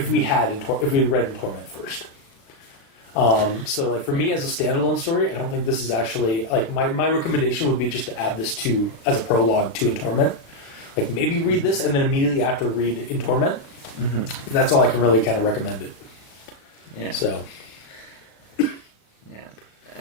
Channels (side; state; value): right; late; 36 ms